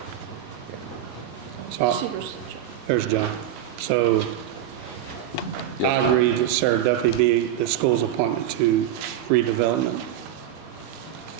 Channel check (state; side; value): quieter; left; 11.0 dB